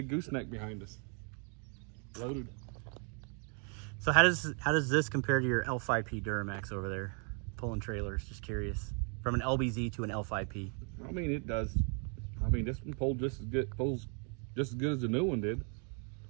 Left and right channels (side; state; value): left; quieter; 39.6 dB